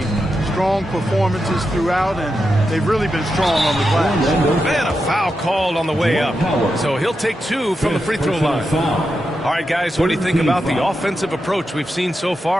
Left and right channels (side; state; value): both; normal; correlation 0.88